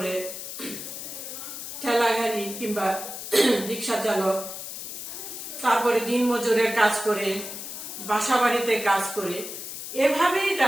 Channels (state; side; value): noise; left; hiss, 8 dB below the sound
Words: ঠেলা গাড়ি কিংবা রিক্সা চালক, তারপরে দিনমজুরের কাজ করে, বাসাবাড়িতে কাজ করে। এভাবেই